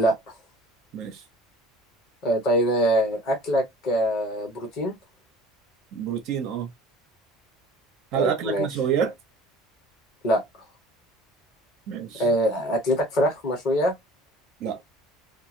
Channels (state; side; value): normal; both; correlation 0.46